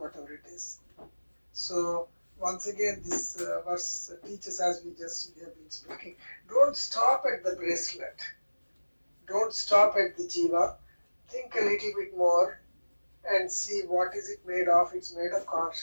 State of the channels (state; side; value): inverted; both; correlation -1.00